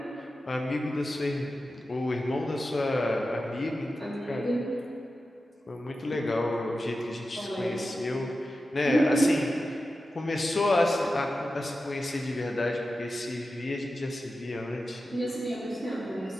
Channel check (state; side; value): normal; both; correlation 0.92